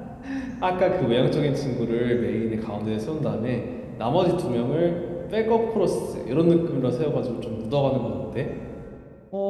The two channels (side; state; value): both; identical; correlation 1.00